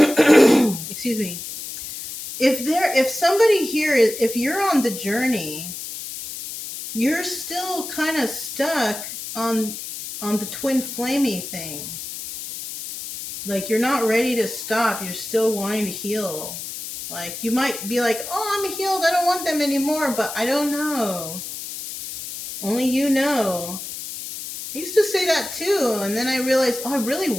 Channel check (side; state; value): left; noise; hiss, 9 dB below the sound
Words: me, if somebody here is, if you're on the journey, you're still kind of stuck on the twin flamey thing. Like you're not ready to stop. You're still wanting to heal. Like you might be like, "Oh, I'm healed. I don't want them anymore." But I don't know. Only you know. I used to say that too, and then I realized, oh, I really